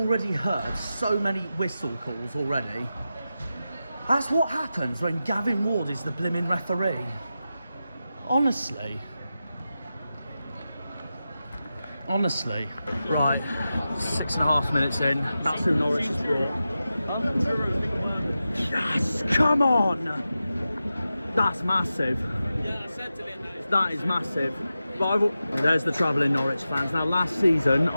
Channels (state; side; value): inverted; both; correlation -0.92